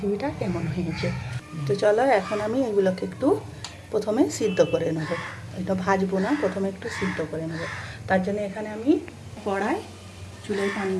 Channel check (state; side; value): identical; both; correlation 1.00